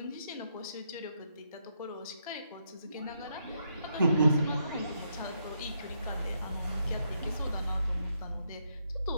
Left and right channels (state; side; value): inverted; both; correlation -0.77